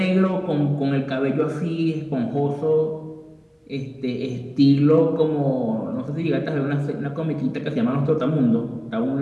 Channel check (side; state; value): both; identical; correlation 1.00